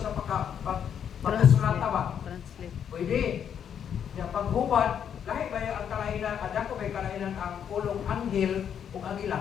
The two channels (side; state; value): right; quieter; 8.5 dB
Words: sa pagkasulata ba? Translate. Pwede. Yung paghubad, lahi ba ang kalainan, adako ba yung kalainan ang pulong anghel o